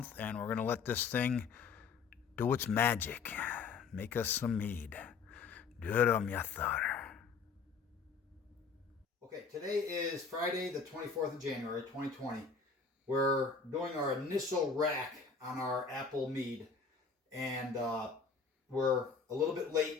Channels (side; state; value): right; quieter; 5.2 dB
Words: and we're going to let this thing do its magic. make us some mead. Durumyathar. Okay, today is Friday, the 24th of January, 2020. We're doing our initial rack on our apple mead, and we're a little bit